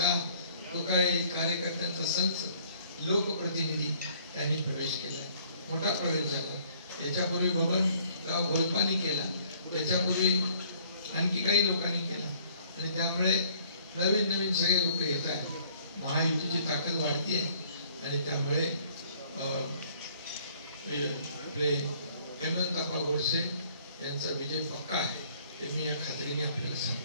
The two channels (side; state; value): both; inverted; correlation -0.59